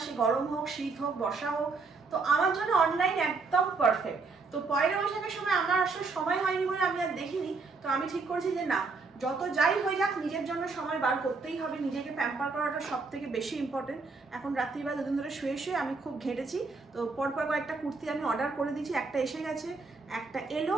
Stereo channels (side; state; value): left; quieter; 4.2 dB